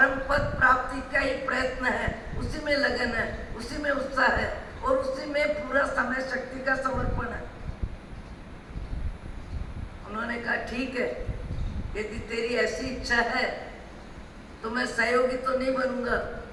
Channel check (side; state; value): both; identical; correlation 1.00